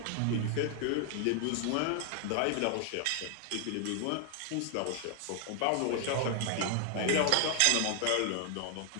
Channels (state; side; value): different; both; correlation 0.00